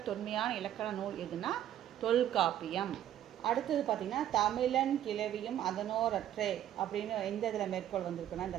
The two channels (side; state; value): left; quieter; 11.5 dB